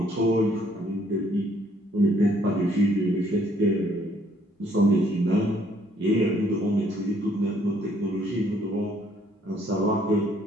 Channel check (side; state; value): both; normal; correlation 0.64